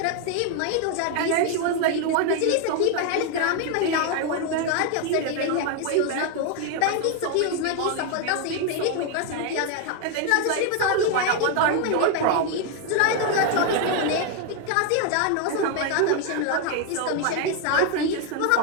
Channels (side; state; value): both; different; correlation 0.01